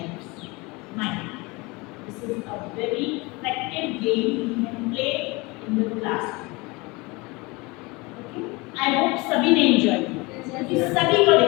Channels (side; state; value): right; quieter; 25.1 dB